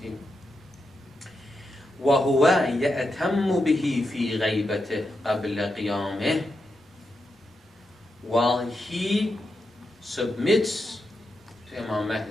وهو يأتم به في غيبته قبل قيامه. While he submits to Imam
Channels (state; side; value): normal; both; correlation 0.86